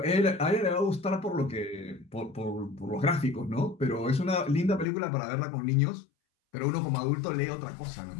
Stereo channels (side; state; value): right; drops out; at 4.9 s